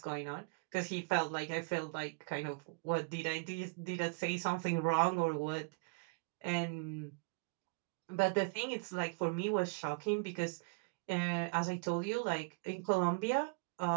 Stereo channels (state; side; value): quieter; left; 30.9 dB